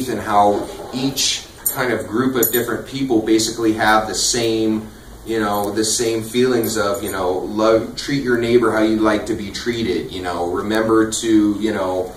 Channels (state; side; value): identical; both; correlation 1.00